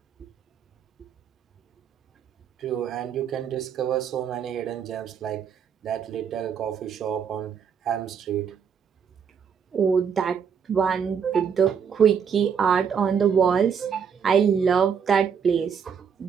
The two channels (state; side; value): quieter; left; 7.1 dB